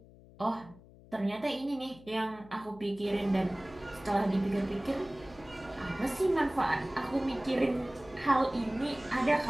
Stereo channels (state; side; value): noise; left; hum, 22 dB below the sound